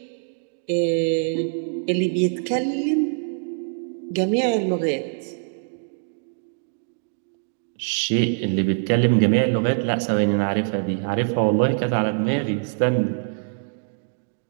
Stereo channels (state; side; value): silent; left; digital silence